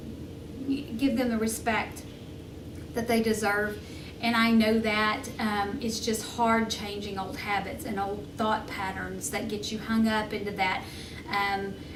give them the respect that they deserve. And I know that it's just hard changing old habits and old thought patterns that get you hung up into that.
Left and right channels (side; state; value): both; identical; correlation 1.00